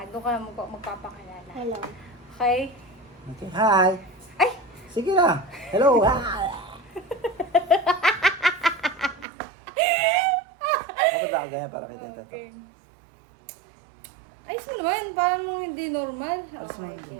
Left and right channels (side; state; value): left; drops out; at 9.2 s